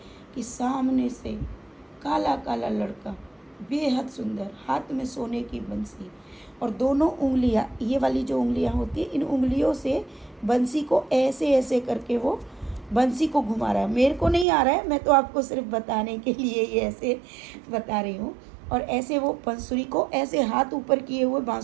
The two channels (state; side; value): drops out; left; at 14.5 s